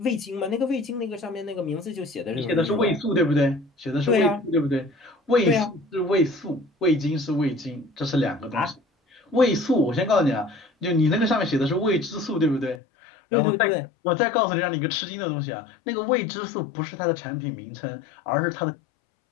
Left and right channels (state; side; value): drops out; right; at 12.8 s